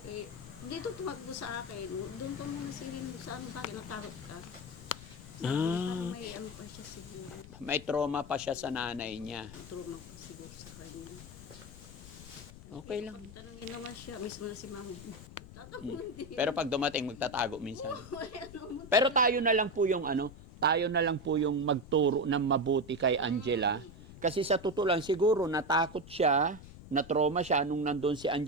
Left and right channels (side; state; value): left; noise; rumble, 16 dB below the sound